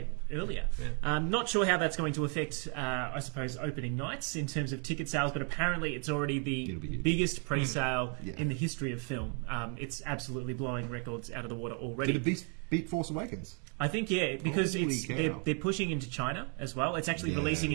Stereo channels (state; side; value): quieter; left; 39.4 dB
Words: earlier. Yeah. Not sure how that's going to affect, I suppose, opening nights in terms of ticket sales, but apparently it's already the biggest pre-sale in the history of film. It's absolutely blowing records out of the water already. Did it beat Force Awakens? I think, because they're pushing into China as well. It's actually releasing